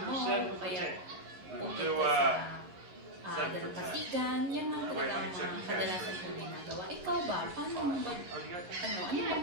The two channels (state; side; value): late; left; 11 ms